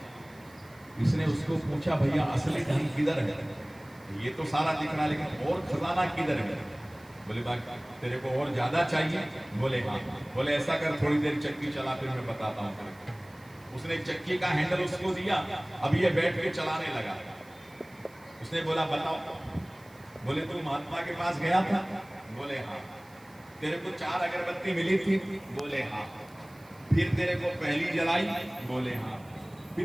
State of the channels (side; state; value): right; noise; hiss, 27 dB below the sound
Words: इसने उसको पूछा भैया असली धन किधर है। ये तो सारा दिख रहा, लेकिन और खजाना किधर है? बोले बाबा तेरे को और ज्यादा चाहिए? बोले हाँ। बोले ऐसा कर, थोड़ी देर चक्की चला, फिर मैं बताता हूँ। उसने चक्की का हैंडल उसको दिया, अब ये बैठ के चलाने लगा। उसने बोला बताओ। बोले तू महात्मा के पास गया था? बोले हाँ। तेरे को 4 अगरबत्ती मिली थी? बोले हाँ। फिर तेरे को पहली जलाई? बोले हाँ।